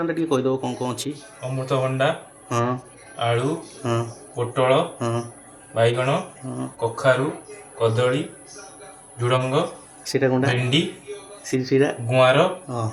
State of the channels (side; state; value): both; identical; correlation 1.00